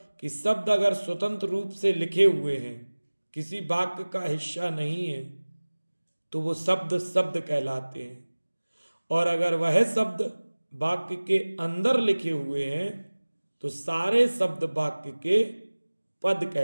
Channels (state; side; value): inverted; both; correlation -1.00